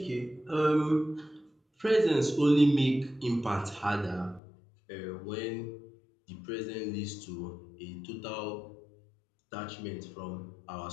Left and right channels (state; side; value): drops out; right; at 4.4 s